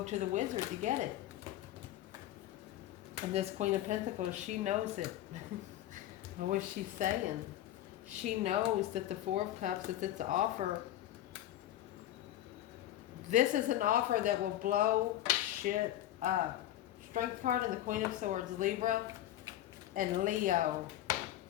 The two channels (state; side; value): quieter; right; 13.2 dB